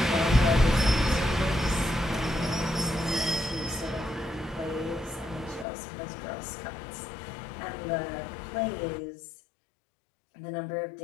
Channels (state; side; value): drops out; right; at 5.7 s